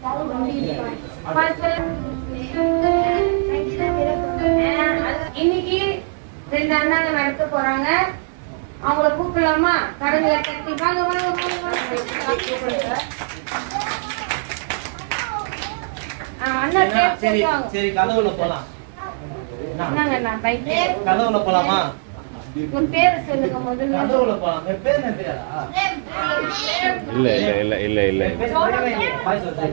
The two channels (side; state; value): left; silent; digital silence